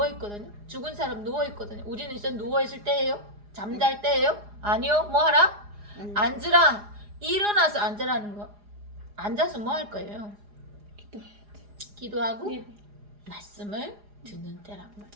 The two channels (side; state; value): left; late; 4.9 ms